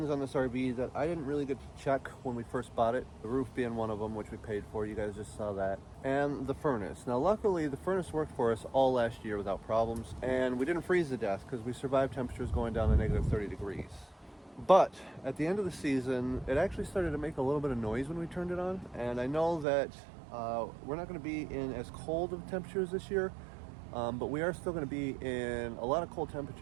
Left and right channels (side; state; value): left; drops out; at 19.7 s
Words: on this RV that I didn't really get to check when we first bought it. The roof being one of them, which we paid for. You guys just saw that. And the furnace. Now, luckily, the furnace worked for us all last year without problems. And we didn't freeze to death because we survived temperatures going down to negative 30 degrees. But at the end of the season, it actually started to make a little bit of noise when we turned it on. And I know that we're not going to be in as cold of temperatures this year. But we are still going to be in a lot of cold